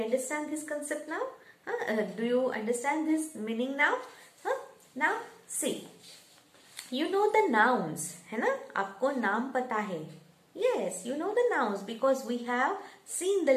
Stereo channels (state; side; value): identical; both; correlation 1.00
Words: understand this concept now? Do you understand this meaning now? Now see, you know the nouns, है ना? आपको नाम पता है. Yes, you know the nouns because we have seen